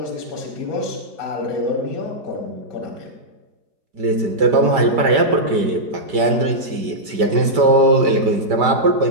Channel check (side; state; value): left; late; 5.1 ms